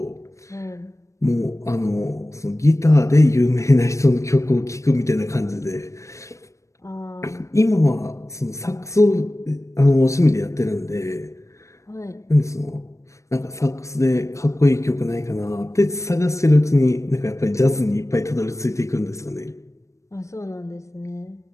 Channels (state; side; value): late; right; 0.15 ms